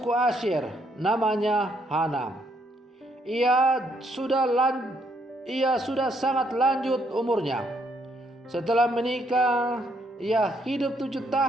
Asyer, namanya Hana. Ia sudah sangat lanjut umurnya. Setelah menikah, ia hidup 7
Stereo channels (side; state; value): both; normal; correlation 0.72